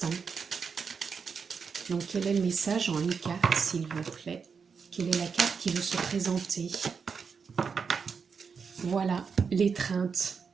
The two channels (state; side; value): quieter; left; 5.8 dB